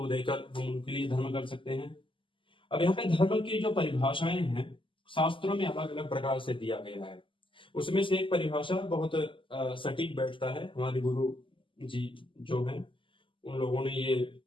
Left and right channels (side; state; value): right; late; 0.25 ms